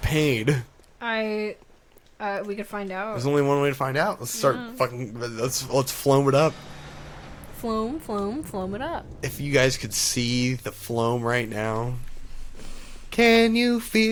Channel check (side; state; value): both; identical; correlation 1.00